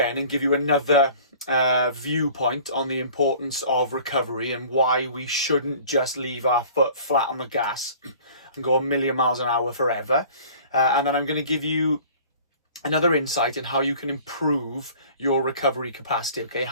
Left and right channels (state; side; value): inverted; both; correlation -0.47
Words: and give you another viewpoint on the importance of recovery and why we shouldn't just leave our foot flat on the gas and go a million miles an hour forever. And then I'm going to give you another insight in how you can improve your recovery capacity, okay?